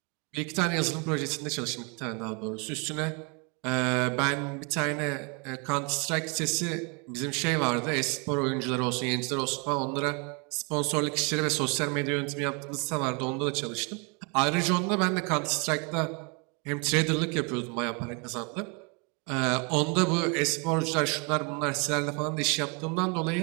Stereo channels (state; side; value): quieter; left; 33.6 dB